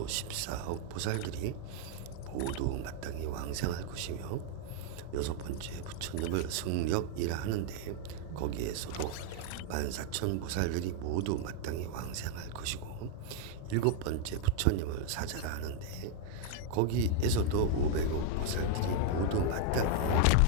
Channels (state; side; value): different; both; correlation 0.00